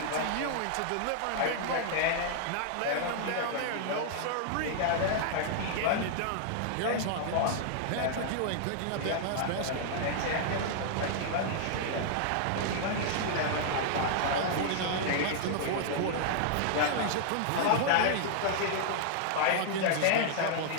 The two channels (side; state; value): both; different; correlation -0.01